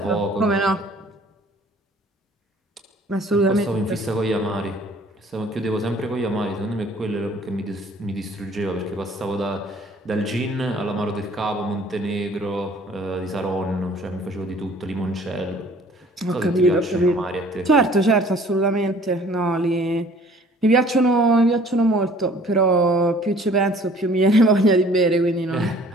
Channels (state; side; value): normal; both; correlation 0.54